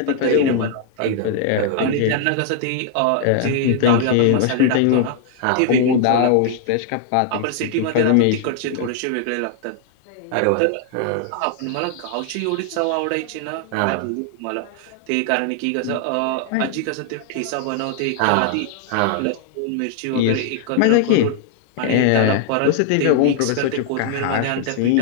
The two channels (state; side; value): different; both; correlation 0.00